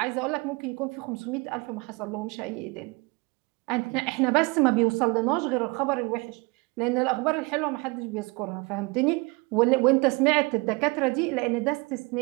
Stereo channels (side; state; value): left; quieter; 26.9 dB